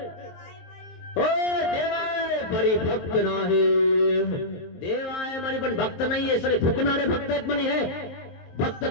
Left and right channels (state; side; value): late; right; 23 ms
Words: हो देवाय परी भक्त नाही. देव आहे म्हणे पण भक्त नाहीये. सगळे फुकणारे भक्त आहेत म्हणे. हे भक्त